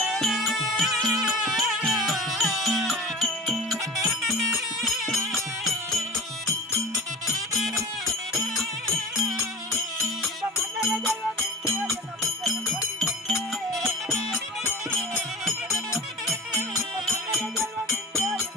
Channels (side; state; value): both; normal; correlation 0.34